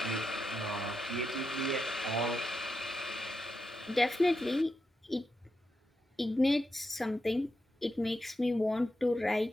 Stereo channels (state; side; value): normal; both; correlation 0.87